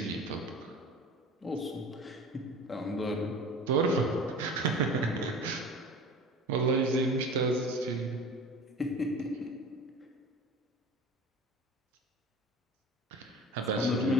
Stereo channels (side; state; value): both; normal; correlation 0.38